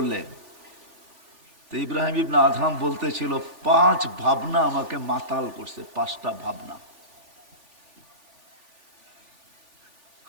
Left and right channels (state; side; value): late; left; 3.5 ms